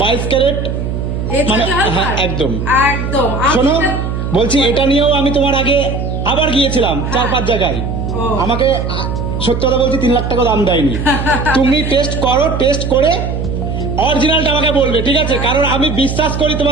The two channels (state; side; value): noise; right; hum, 3 dB below the sound